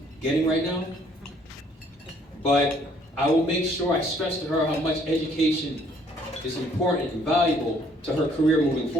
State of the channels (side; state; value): both; normal; correlation 0.63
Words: getting right now, but I will make sure I stress to her how much education is important and valuable to her career moving